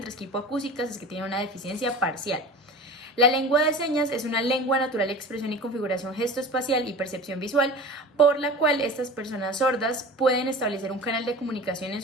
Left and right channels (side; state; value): both; normal; correlation 0.36